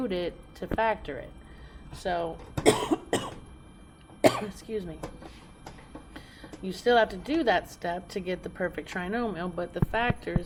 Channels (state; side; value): identical; both; correlation 1.00